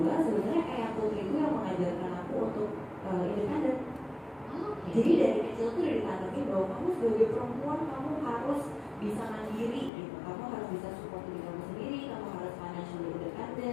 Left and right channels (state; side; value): drops out; right; at 9.9 s